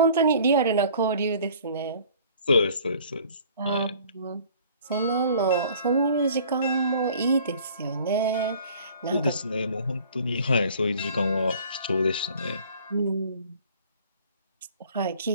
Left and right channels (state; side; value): inverted; both; correlation -0.51